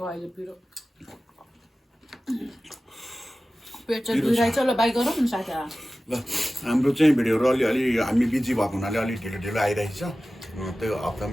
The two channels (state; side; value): normal; both; correlation 0.96